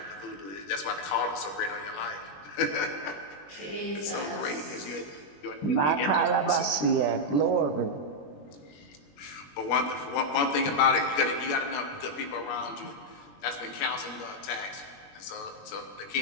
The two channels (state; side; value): late; right; 21 ms